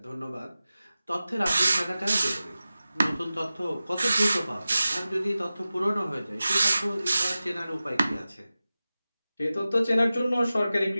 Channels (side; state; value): both; inverted; correlation -0.95